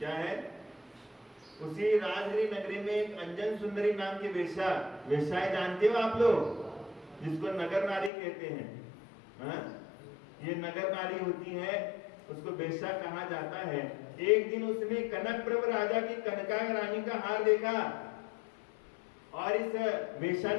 है, उसी राजगृह नगरी में एक अंजन सुंदरी नाम की वेश्याएं जानते हो आप लोग, जिसको नगर नारी कहते हैं। ये नगर नारी होती है, उसको वेश्या कहा जाता है। एक दिन उसने कनक प्रभ राजा की कनका रानी का हार देखा, और इस वेश्या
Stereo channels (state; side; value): drops out; right; at 8.1 s